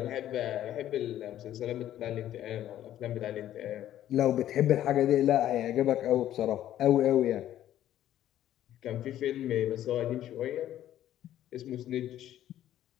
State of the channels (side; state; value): right; quieter; 12.2 dB